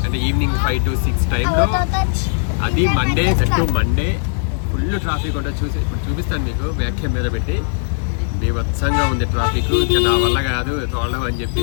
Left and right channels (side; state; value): right; silent; 59 dB below the other